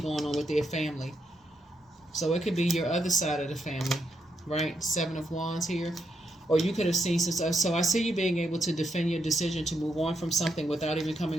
on with their family. So it could be your other side of the family, right? 7 of Wands here. or you could have seen some stuff. So I see you being able to defend your decision to move on from something without even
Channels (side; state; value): both; normal; correlation 0.80